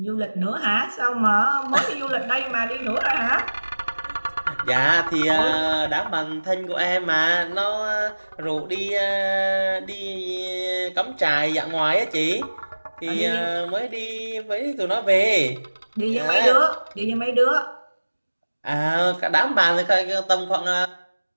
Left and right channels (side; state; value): both; inverted; correlation -1.00